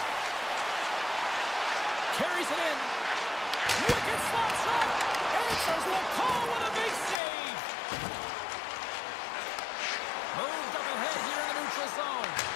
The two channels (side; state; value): right; drops out; at 7.2 s